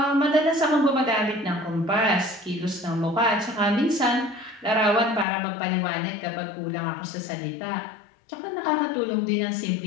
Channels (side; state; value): right; drops out; at 5.2 s